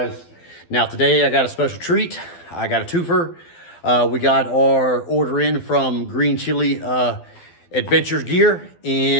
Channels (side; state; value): right; late; 12 ms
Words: Now, today I got a special treat. I got a twofer. We got our order in from Green Chile Adventures Gear,